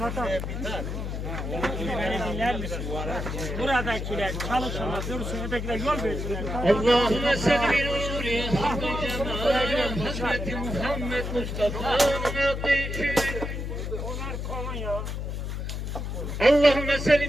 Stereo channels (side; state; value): left; noise; hum, 4 dB below the sound